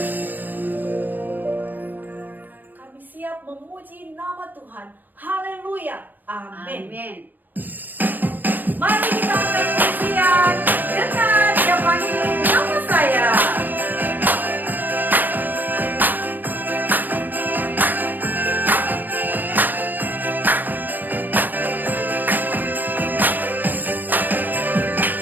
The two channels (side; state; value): left; late; 0.090 ms